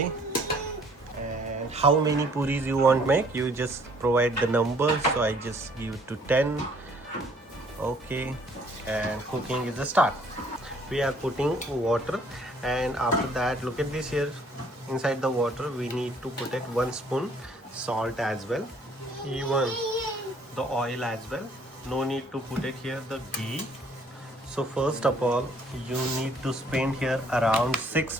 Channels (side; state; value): both; normal; correlation 0.60